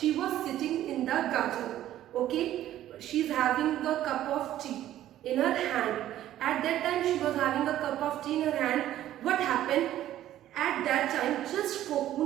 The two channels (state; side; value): quieter; left; 12.8 dB